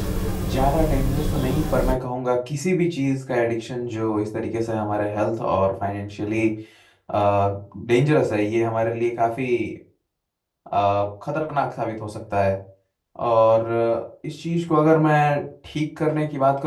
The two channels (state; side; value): identical; both; correlation 1.00